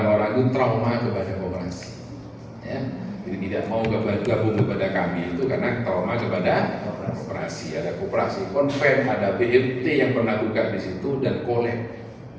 itu trauma kepada koperasi, ya. Jadi tidak mau gabung kepada kami itu karena trauma kepada koperasi. Ada koperasi konven, ada BMT yang pernah buka di situ dan kolek,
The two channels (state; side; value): identical; both; correlation 1.00